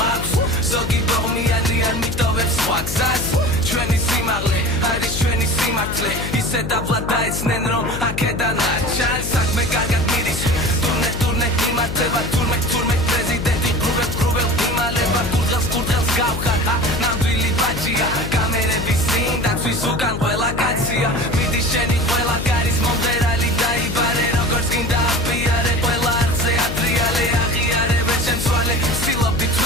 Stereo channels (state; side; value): noise; left; hum, 6 dB below the sound